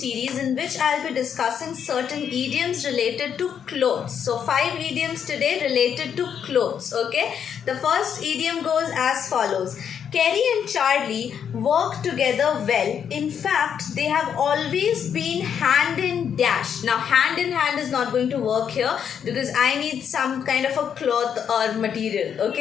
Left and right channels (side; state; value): right; quieter; 8.0 dB